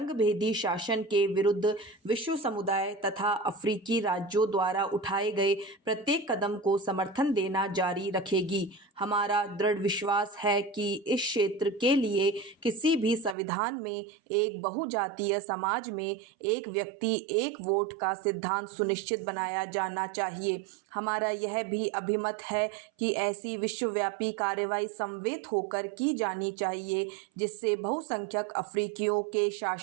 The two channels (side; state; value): left; drops out; at 13.4 s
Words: शासन के विरुद्ध विश्व समुदाय तथा अफ्रीकी राज्यों द्वारा उठाए गए प्रत्येक कदम को समर्थन देना जारी रखेगी। हमारा दृढ़ विश्वास है कि इस क्षेत्र के लिए किसी भी संविधान में एक बहुजातीय समाज में एक व्यक्ति एक वोट का सिद्धांत सुनिश्चित बनाया जाना चाहिए। हमारा यह भी अभिमत है कि ऐसी विश्वव्यापी कार्रवाई समवेत होकर की जानी चाहिए जिससे बहुसंख्यक अफ्रीकियों के